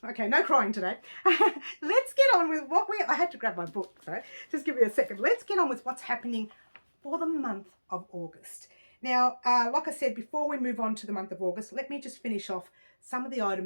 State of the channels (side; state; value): both; inverted; correlation -1.00